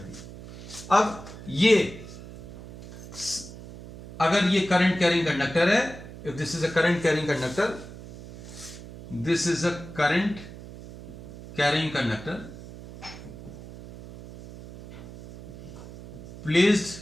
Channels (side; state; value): right; noise; hum, 14 dB below the sound